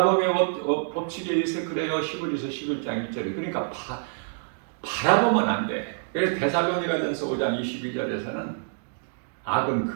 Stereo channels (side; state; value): left; silent; digital silence